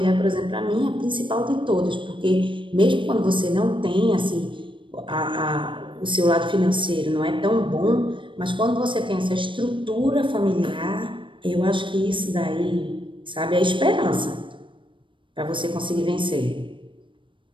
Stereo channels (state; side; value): late; left; 0.24 ms